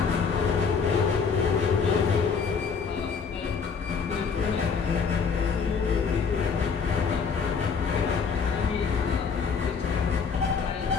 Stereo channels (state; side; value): quieter; right; 5.8 dB